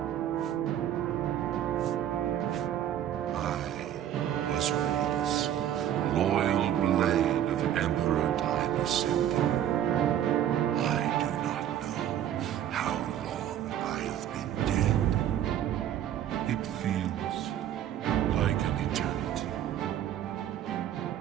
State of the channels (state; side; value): quieter; left; 10.9 dB